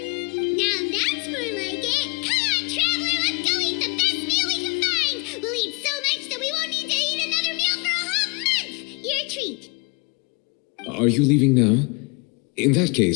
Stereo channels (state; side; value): quieter; right; 30.5 dB